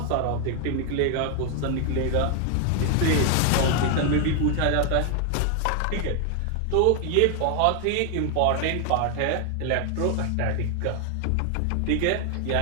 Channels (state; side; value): different; both; correlation 0.00